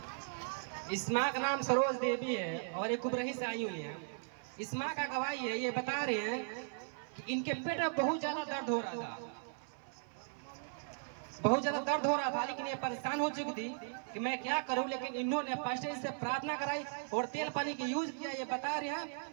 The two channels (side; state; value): left; silent; 53 dB below the other